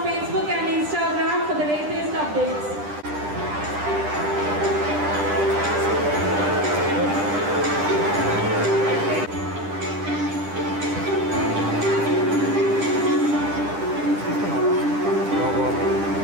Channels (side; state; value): left; late; 10 ms